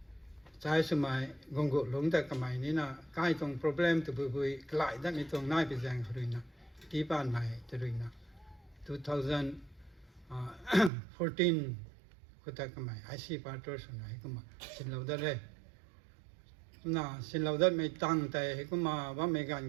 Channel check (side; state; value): left; drops out; at 10.9 s